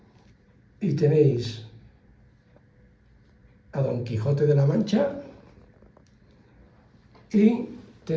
Y tenéis a Don Quijote de la Mancha y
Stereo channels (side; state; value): both; identical; correlation 1.00